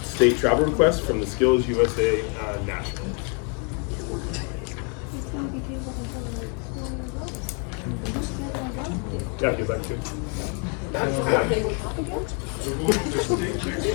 state travel requests from the Skills USA National. Yeah, if you'd like to. We're going to the state next week,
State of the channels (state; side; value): quieter; right; 38.2 dB